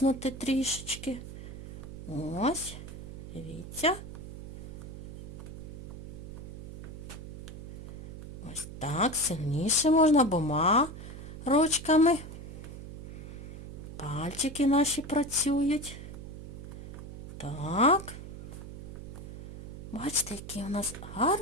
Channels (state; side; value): noise; right; hum, 10 dB below the sound